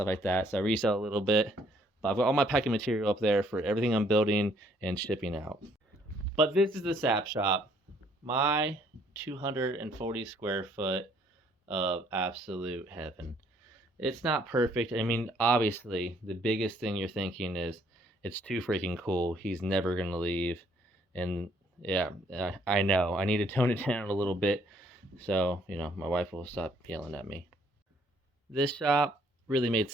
like that, so I resell a little bit, but I've got all my packing material up there for everything I'm building and shipping out. But this is the Sap Shop, my 240 square foot of absolute heaven. It's not perfect. I mean, obviously, the biggest thing you're thinking is it's too freaking cool. He's never going to leave. And yeah, I know. I need to tone it down a little bit so, you know, my wife will stop yelling at me. This shop really made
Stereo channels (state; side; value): normal; both; correlation 0.65